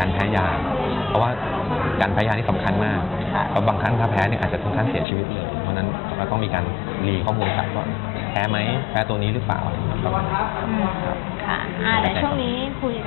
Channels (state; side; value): drops out; right; at 5.1 s